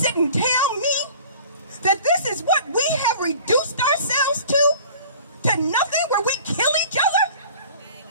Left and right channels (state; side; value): inverted; both; correlation -0.46